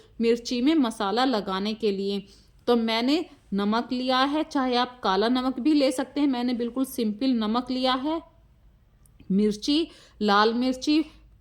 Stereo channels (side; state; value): both; identical; correlation 1.00